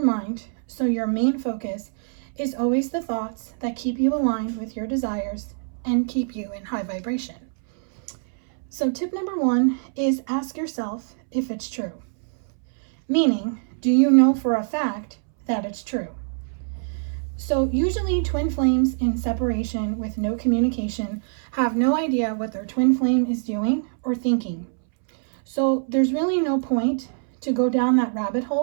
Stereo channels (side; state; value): left; silent; 63 dB below the other